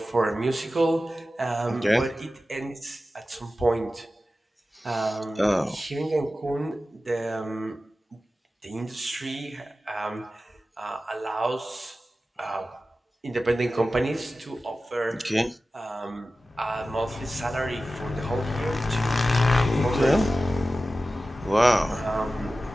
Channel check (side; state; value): both; normal; correlation 0.94